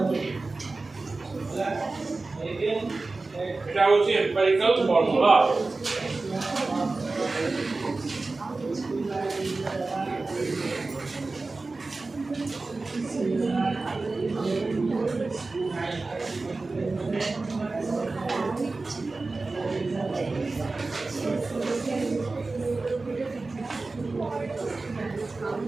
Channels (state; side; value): quieter; left; 3.5 dB